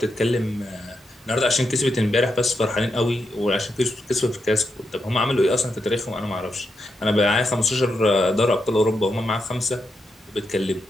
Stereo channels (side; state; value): both; normal; correlation 0.83